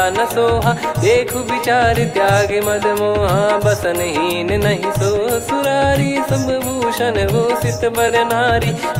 न सोहा देखु विचार त्याग मद मोहा बसनहीन नहीं सो सुरारी सब भूषण भूषित बर नारी,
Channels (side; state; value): both; identical; correlation 1.00